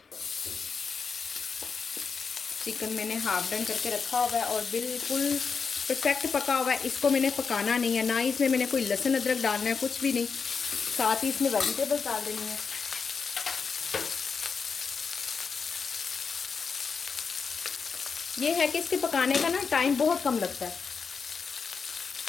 चिकन मैंने हाफ डन करके रखा हुआ है और बिल्कुल परफेक्ट पका हुआ है, इसको मैंने पकाना नहीं है, ना ही इसमें मैंने कोई लहसुन अदरक डालना है, कुछ भी नहीं। साथ ही इसमें वेजिटेबल्स डाल देनी है। ये है कि इसके पकाने का ना टाइम बहुत कम लगता है।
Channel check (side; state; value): right; quieter; 5.5 dB